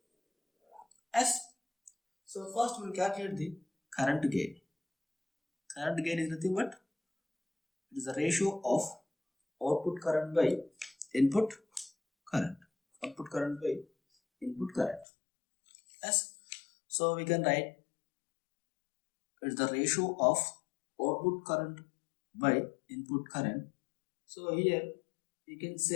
S. So first we will calculate the current gain. Current gain is nothing but it is the ratio of output current by input current. Output current by input current. S. So we can write it is the ratio of output current by input current. So here you can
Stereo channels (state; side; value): drops out; right; at 15.1 s